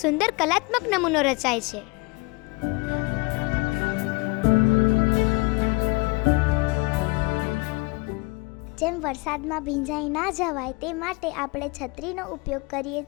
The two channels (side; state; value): right; quieter; 26.2 dB